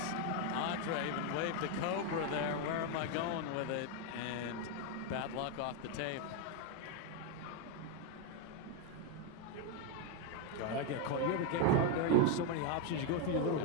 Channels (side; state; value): both; different; correlation 0.02